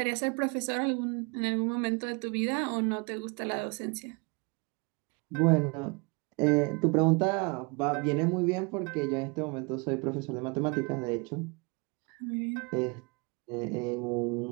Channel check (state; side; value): quieter; left; 30.3 dB